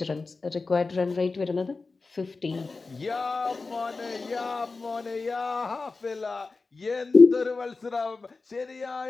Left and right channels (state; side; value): quieter; right; 3.9 dB